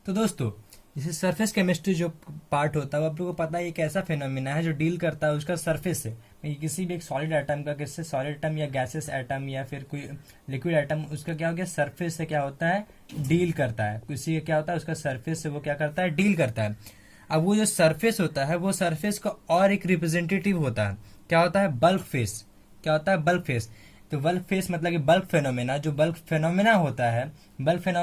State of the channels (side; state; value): both; identical; correlation 1.00